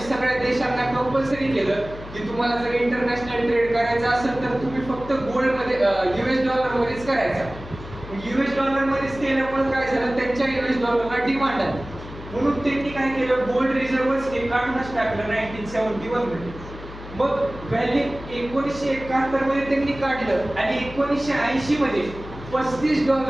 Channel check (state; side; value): noise; left; hum, 14 dB below the sound